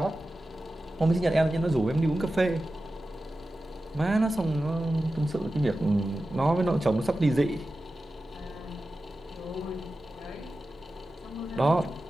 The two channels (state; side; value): normal; both; correlation 0.94